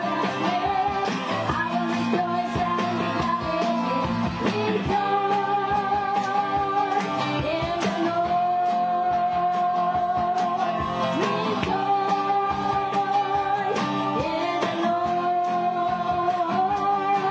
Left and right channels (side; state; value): both; identical; correlation 1.00